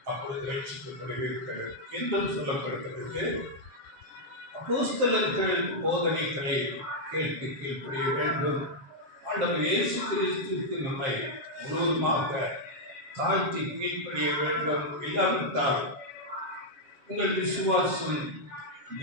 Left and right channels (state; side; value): late; left; 7.4 ms